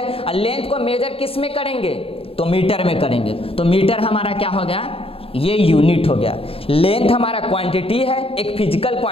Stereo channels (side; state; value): right; late; 0.27 ms